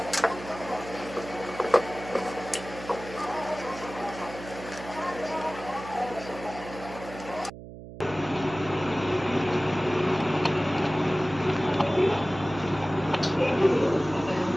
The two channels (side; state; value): right; noise; hum, 13 dB below the sound